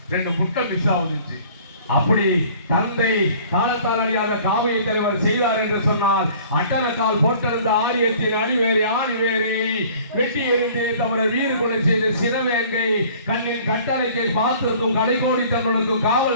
2 முட்டை மிஸ் ஆகுதுச்சு. அப்படி தந்தை காலத்தால் அறியாத காவிய தலைவர் செய்தார் என்று சொன்னால், அட்டனக்கால் போட்டிருந்த ஆரியத்தின் அடிவேரை ஆணிவேரை வெட்டி எறிந்தே தவிர வீறு கொலை செய்த சினவேங்கை கண்ணின் கட்டளைக்கை பார்த்திருக்கும் கடைகோடி தன்னுக்கும்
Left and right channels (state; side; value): inverted; both; correlation -0.51